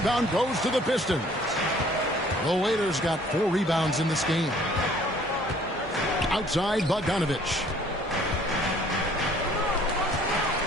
goes to the Pistons. The Waiters got 4 rebounds in this game. Outside, Bogdanovich.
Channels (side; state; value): both; normal; correlation 0.57